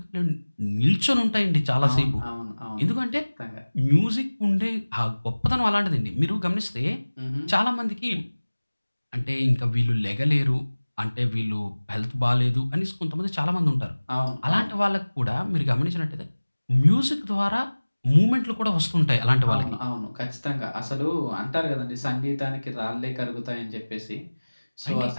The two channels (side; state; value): both; inverted; correlation -1.00